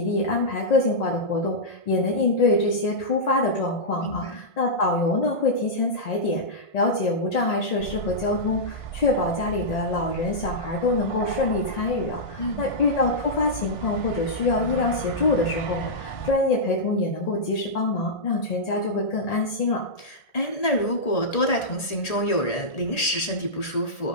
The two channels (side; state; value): right; late; 1.8 ms